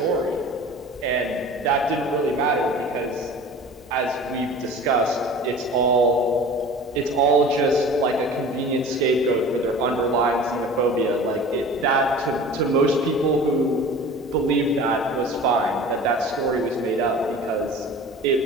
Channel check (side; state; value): both; normal; correlation 0.40